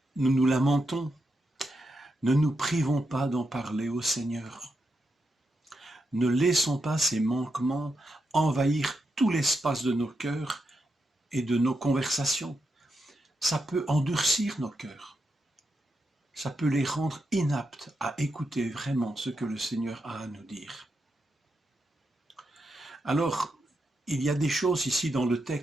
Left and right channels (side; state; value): both; normal; correlation 0.85